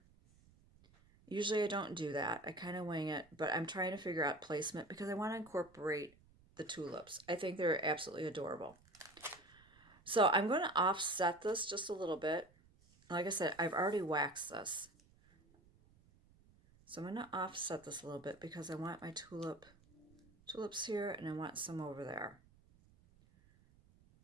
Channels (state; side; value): noise; right; rumble, 28 dB below the sound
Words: Usually I don't do that. I kind of wing it, but I'm trying to figure out placement because I want to incorporate the tulips. I think they're absolutely adorable. So I'm going to offset this just a little bit. Like I said, I've already waxed this. So I'm going to offset this a little bit because I want my tulips here and I want some over there.